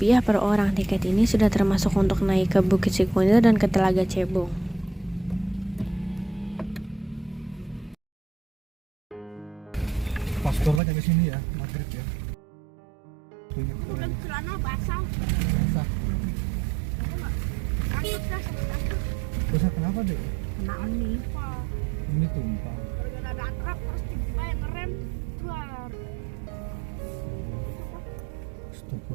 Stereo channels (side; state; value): left; drops out; at 10.8 s